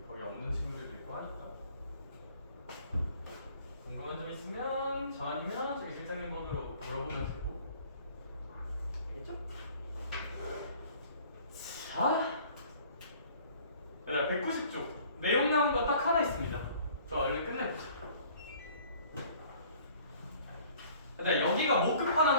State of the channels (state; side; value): inverted; both; correlation -0.53